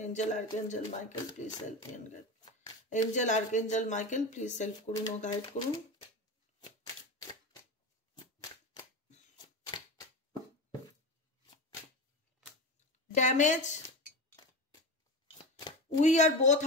Angel archangel Michael please help me and guide. Angel archangel Michael please help করুন ও গাইড করুন। Damage, we are both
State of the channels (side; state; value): both; normal; correlation 0.24